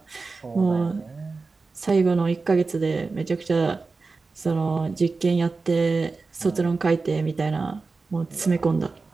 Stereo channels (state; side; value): quieter; left; 4.0 dB